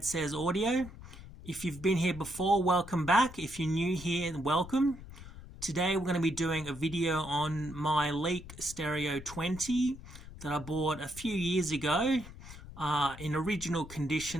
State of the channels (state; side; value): noise; left; rumble, 15 dB below the sound